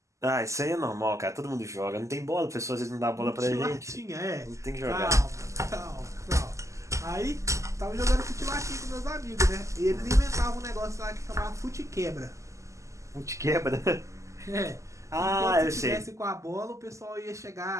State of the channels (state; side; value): late; left; 0.15 ms